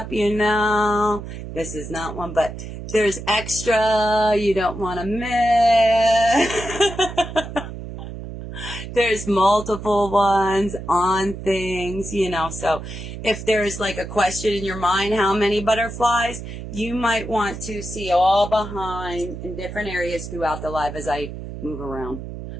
you know. This is not one, but there's extra you don't want to miss. There's multiple ones on things, you know. So if there's like a question in your mind, how many butterflies, you might want to see all behind in different areas throughout the live as I move around.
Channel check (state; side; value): noise; right; hum, 10 dB below the sound